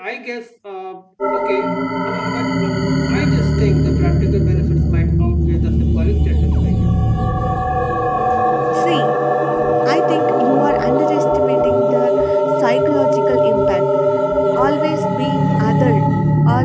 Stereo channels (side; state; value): both; identical; correlation 1.00